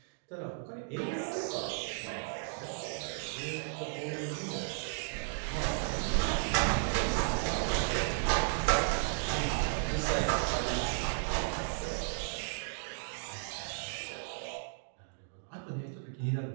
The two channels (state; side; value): silent; left; digital silence